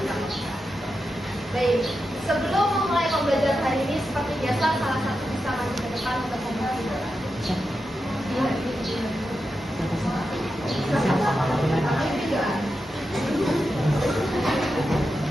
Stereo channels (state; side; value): normal; both; correlation 0.89